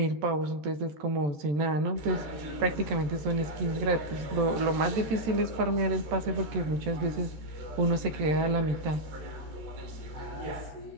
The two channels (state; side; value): late; left; 14 ms